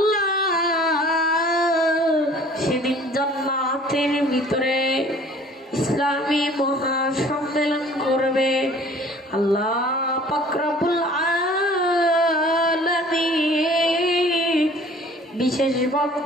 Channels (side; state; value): both; normal; correlation 0.51